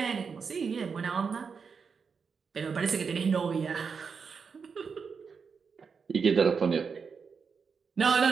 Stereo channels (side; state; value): left; quieter; 5.7 dB